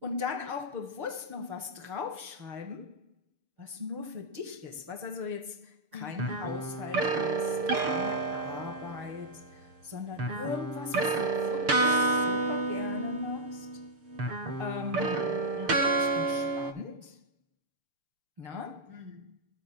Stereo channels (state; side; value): late; left; 6.7 ms